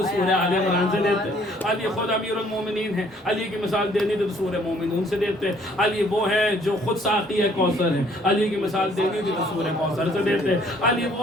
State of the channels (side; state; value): both; normal; correlation 0.61